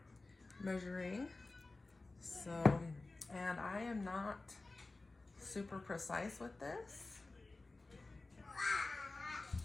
measuring. So, and I am not super precise with this.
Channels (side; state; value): right; quieter; 3.3 dB